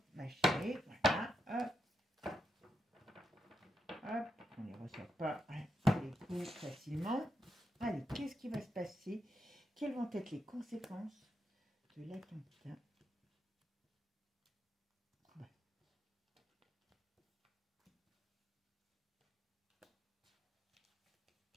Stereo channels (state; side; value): normal; both; correlation 0.84